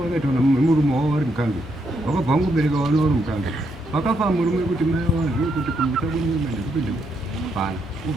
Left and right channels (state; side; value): normal; both; correlation 0.77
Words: vakaitona murumo wavo vari mukandu. Vakabva vangobereka vana vari mukandu. Vakafa murume kuti mai vazive kuti kumisa kunyuma ndikupinda pana.